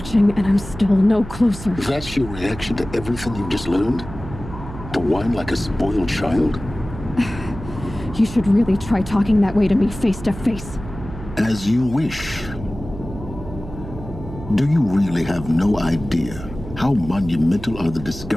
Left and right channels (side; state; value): right; noise; hum, 12 dB below the sound